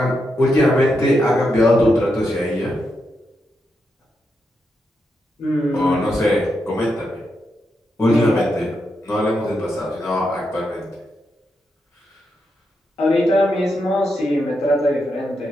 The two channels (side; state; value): both; normal; correlation 0.84